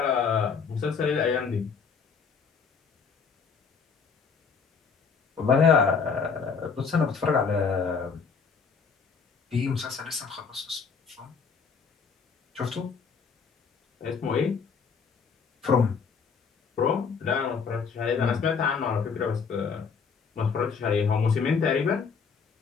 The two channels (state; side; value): quieter; right; 5.7 dB